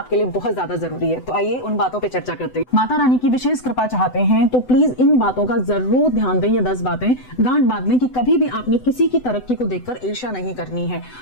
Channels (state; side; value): late; right; 7.9 ms